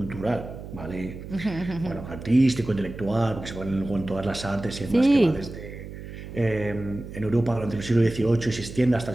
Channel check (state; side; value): noise; right; hum, 12 dB below the sound